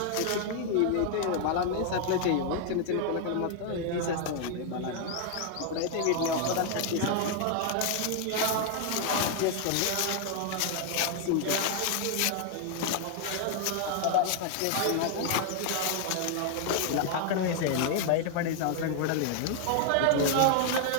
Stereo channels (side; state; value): both; different; correlation 0.00